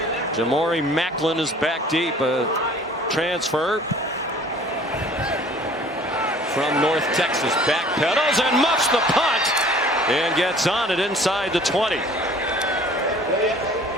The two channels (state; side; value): normal; both; correlation 0.50